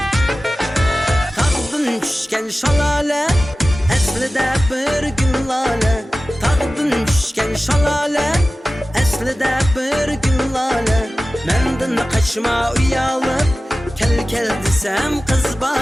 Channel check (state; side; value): normal; both; correlation 0.96